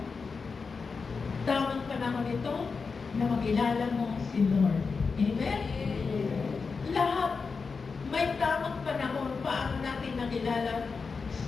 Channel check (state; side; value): quieter; right; 4.9 dB